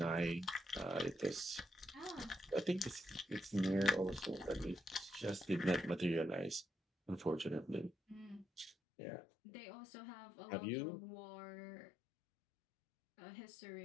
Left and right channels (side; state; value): right; drops out; at 8.8 s